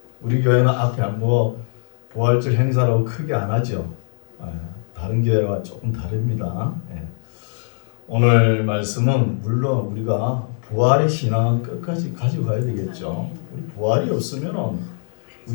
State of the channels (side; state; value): right; silent; digital silence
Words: 우리 교회는 앞에 부활절 행사라고 크게 안 하죠. 다른 교회와 조금 다릅니다. 오늘 말씀은 물론 우리가 부활의 신앙은 끝까지 가지고 가야 되겠죠. 우리 부활이 없으면